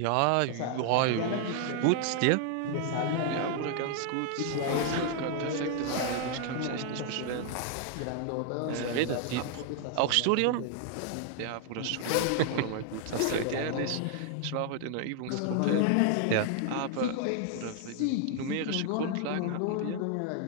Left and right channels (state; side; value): different; both; correlation 0.00